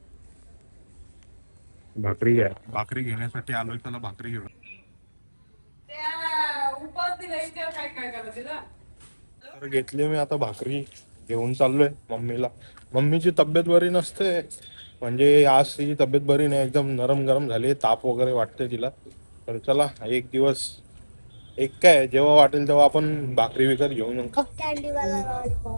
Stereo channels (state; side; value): inverted; both; correlation -1.00